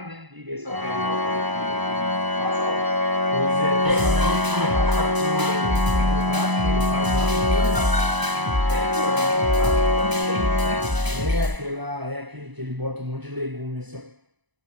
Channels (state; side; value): late; left; 1.0 ms